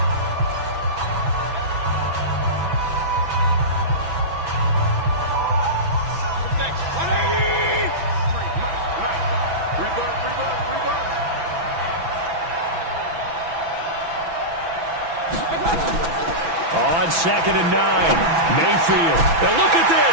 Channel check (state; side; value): late; left; 6.0 ms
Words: On 2nd and 9, Mayfield. Now look at